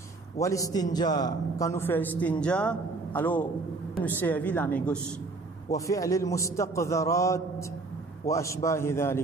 Wal istinja, quand nous faisons istinja, alors, nous servons la main gauche. وفعل المستقذرات وأشباه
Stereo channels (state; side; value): quieter; left; 3.6 dB